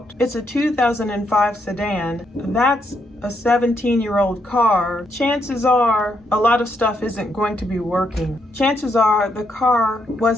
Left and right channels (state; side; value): normal; both; correlation 0.77